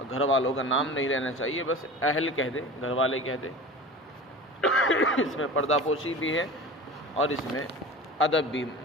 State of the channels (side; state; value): both; normal; correlation 0.34